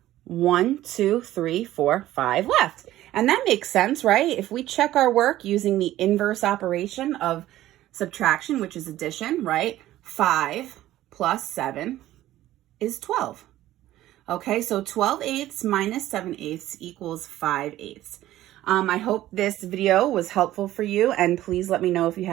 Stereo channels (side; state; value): left; quieter; 14.4 dB